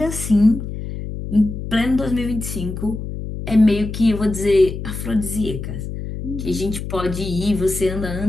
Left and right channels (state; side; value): noise; left; hum, 7 dB below the sound